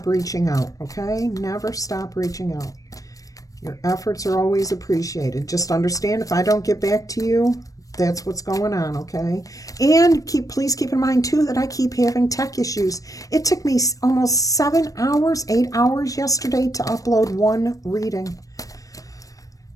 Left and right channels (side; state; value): right; late; 0.16 ms